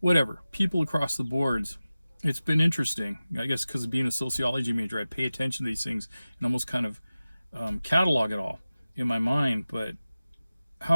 people across the boards. It's been interesting, I guess, because of being a sociology major. I pay attention to these things and almost kind of catalog it all in my mind. But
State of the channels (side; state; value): both; inverted; correlation -0.96